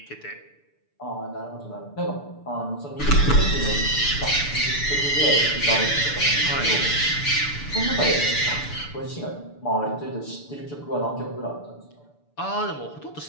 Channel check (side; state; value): right; late; 6.9 ms